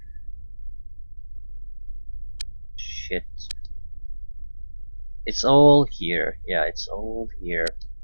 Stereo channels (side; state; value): both; inverted; correlation -1.00